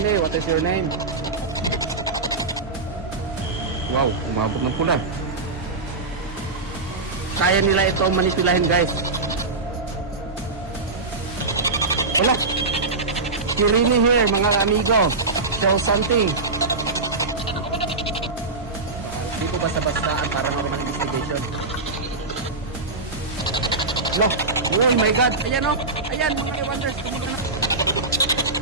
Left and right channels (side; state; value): left; quieter; 3.6 dB